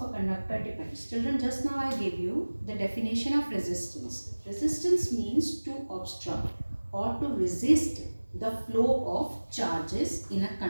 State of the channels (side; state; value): both; inverted; correlation -1.00